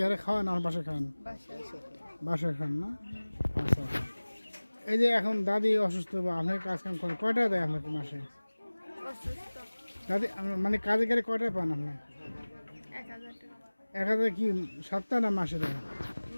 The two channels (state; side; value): inverted; both; correlation -1.00